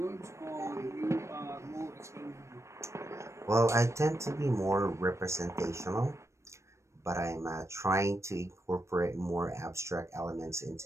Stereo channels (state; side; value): late; left; 0.14 ms